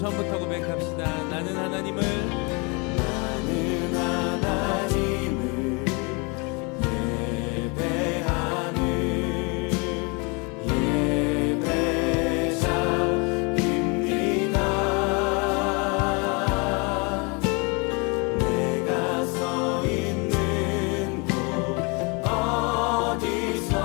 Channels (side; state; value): right; quieter; 31.0 dB